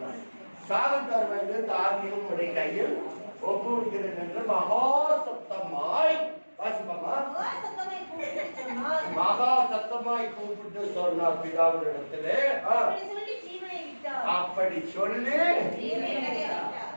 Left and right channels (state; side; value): inverted; both; correlation -1.00